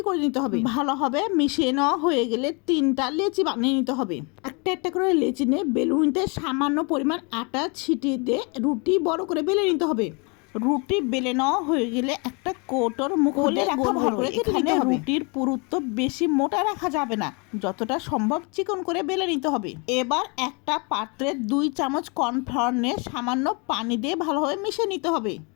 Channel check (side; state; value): right; quieter; 32.0 dB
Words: করে নিতে হবে। ভালোভাবে মিশিয়ে নেওয়া হয়ে গেলে 3টা লেচি বানিয়ে নিতে হবে। একটা একটা করে লেচি নিয়ে বেলুনিতে সামান্য পরিমাণ আটা ছিটিয়ে দিয়ে রুটি বড় করে বেলে নিতে হবে। রুটি বেলে নেওয়া হয়ে গেলে একটা কৌটোর মুখে রাখা ভালো করে এখানে রুটির পুরুত্ব বেশি মোটা রাখা যাবে না, যতটা সম্ভব চিকন করে বেলে নিতে হবে। এবার একটা পাত্রে 2 চামচ কর্নফ্লাওয়ার নিয়ে সামান্য পানি দিয়ে ভালোভাবে মিশিয়ে নিতে হবে।